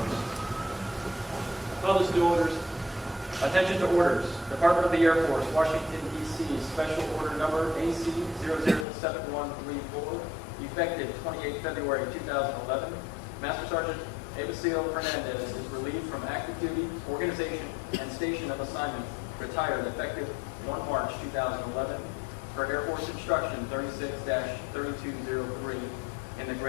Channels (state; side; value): drops out; right; at 8.8 s